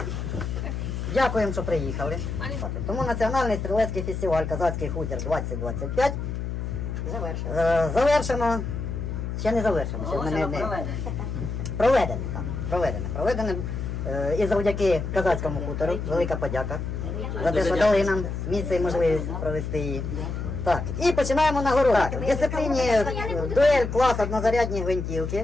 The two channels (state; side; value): noise; left; hum, 4 dB below the sound